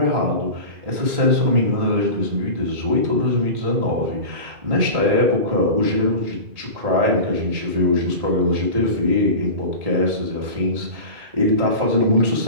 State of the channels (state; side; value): late; left; 1.8 ms